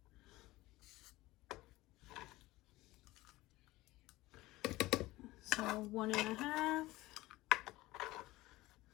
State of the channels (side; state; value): right; quieter; 18.8 dB